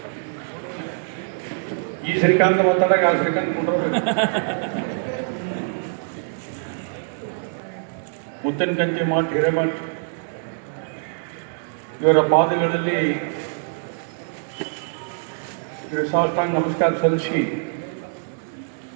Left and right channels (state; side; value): silent; left; digital silence